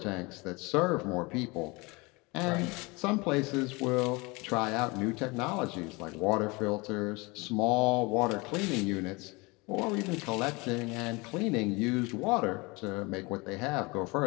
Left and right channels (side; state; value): right; quieter; 25.8 dB